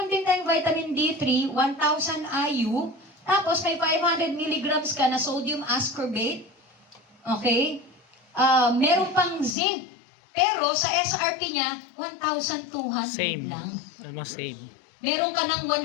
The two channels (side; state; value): right; drops out; at 9.6 s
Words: din tayong vitamin D3, 1,000 IU, tapos may 500 milligrams ka na sodium ascorbate. Okay? Meron pang zinc. Pero sa SRP niya, 1,200 Same. lang. Almost same. Meron ka ng